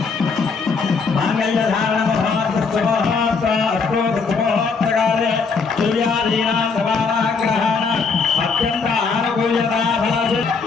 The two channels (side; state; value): right; quieter; 4.9 dB